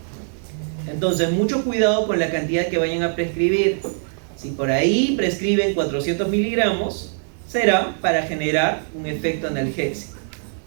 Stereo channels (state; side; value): silent; left; digital silence